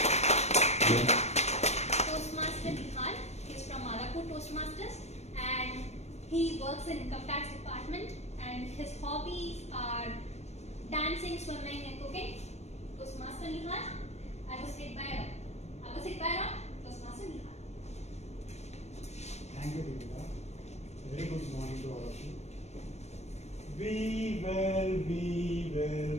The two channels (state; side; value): late; right; 0.32 ms